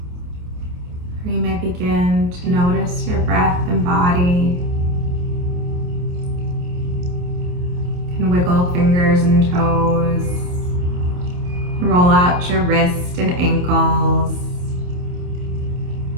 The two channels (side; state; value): left; late; 28 ms